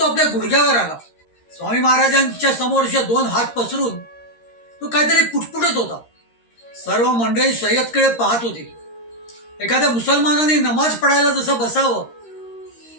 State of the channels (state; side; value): late; right; 13 ms